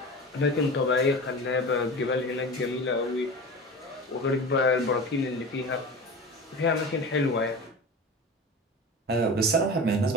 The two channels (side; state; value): both; normal; correlation 0.32